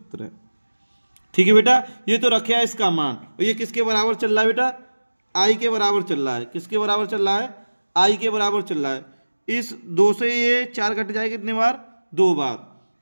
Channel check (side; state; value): both; inverted; correlation -1.00